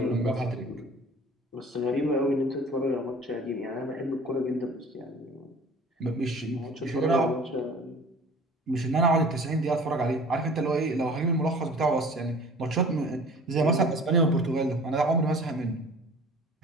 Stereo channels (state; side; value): normal; both; correlation 0.46